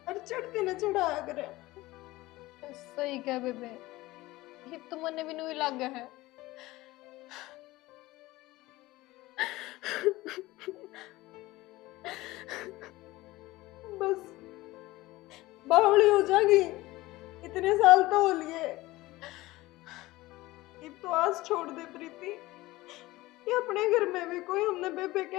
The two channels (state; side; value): quieter; right; 19.0 dB